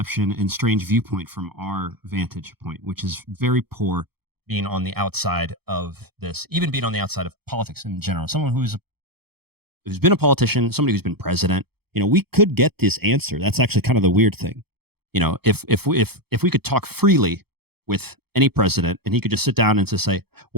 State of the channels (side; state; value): left; late; 0.96 ms